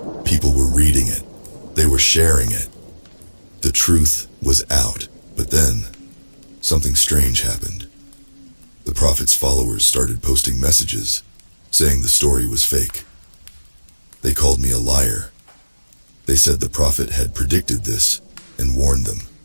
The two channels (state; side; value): inverted; both; correlation -1.00